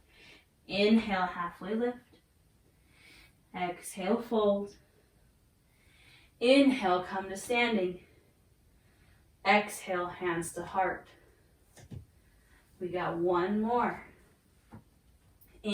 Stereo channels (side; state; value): both; identical; correlation 1.00